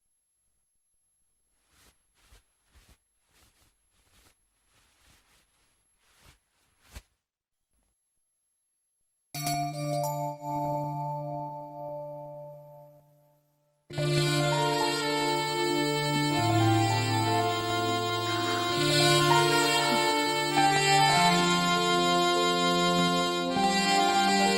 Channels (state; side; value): identical; both; correlation 1.00